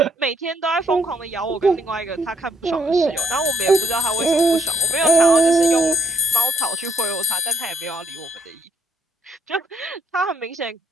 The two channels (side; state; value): both; normal; correlation 0.67